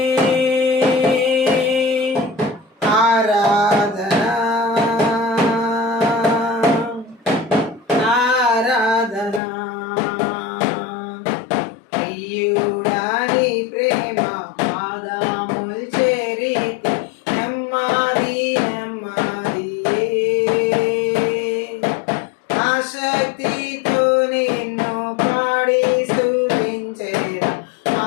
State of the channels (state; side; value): drops out; right; at 9.4 s